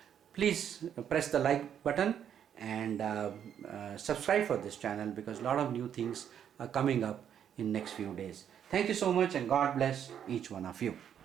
please press the like button and subscribe for this channel, because a lot of new things are coming up in next few days. Thank you so much, and God bless each one of you.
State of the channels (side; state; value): left; quieter; 9.0 dB